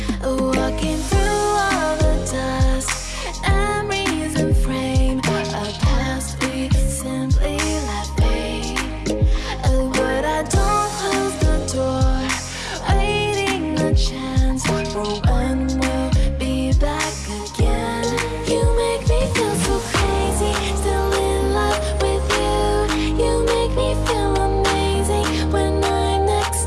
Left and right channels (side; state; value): both; identical; correlation 1.00